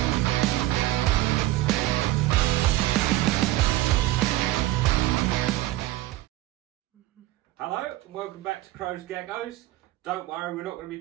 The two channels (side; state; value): left; quieter; 16.3 dB